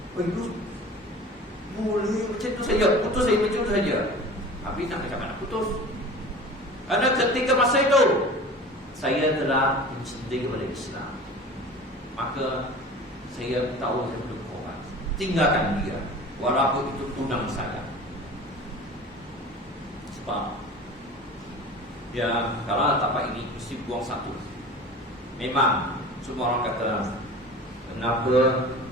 You boleh macam tu saja, putus saya macam tu saja. Tapi nak macam mana putus? Karena ketika masa itu saya telah mencintai kepada Islam. Maka saya tahu saya perlu korban, tinggalkan dia, walaupun itu tunang saya. Sebab kalau tapak ini mesti buang satu. Memang semua orang kata Kenapa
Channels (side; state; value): both; normal; correlation 0.38